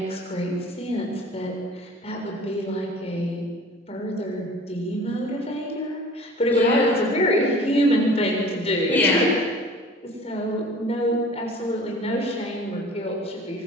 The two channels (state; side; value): normal; both; correlation 0.45